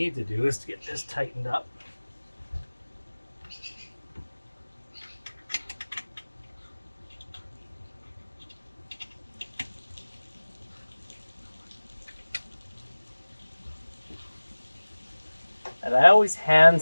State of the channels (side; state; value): both; inverted; correlation -1.00